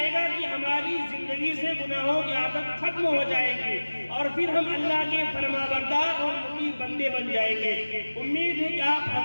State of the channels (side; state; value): both; inverted; correlation -1.00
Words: گا کہ ہماری زندگی سے گناہوں کی عادت ختم ہو جائے گی اور پھر ہم اللہ کے فرمانبردار اور مطیع بندے بن جائیں گے. امید ہے کہ آپ